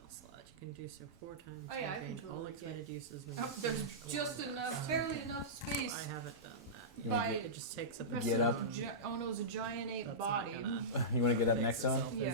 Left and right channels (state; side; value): normal; both; correlation -0.16